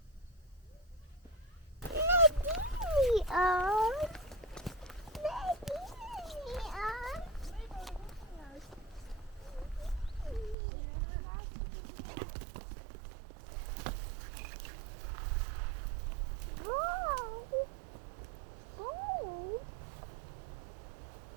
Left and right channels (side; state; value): left; drops out; at 10.6 s